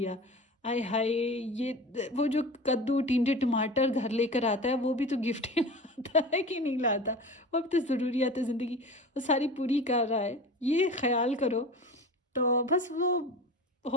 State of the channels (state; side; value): normal; both; correlation 0.35